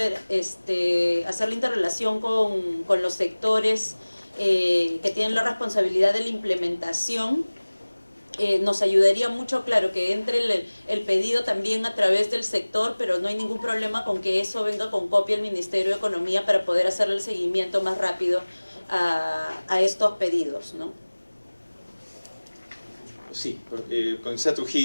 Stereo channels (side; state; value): both; inverted; correlation -1.00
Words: la interrelación con los sectores que tienen la responsabilidad de la implementación. Nos ayudaría mucho, claro, que entre el pedido también a través del sector, pero no hay ningún problema con que eso venga con copia al Ministerio de Economía para poder hacerle el seguimiento más rápido a estos pedidos, ¿no? Sí, Comisar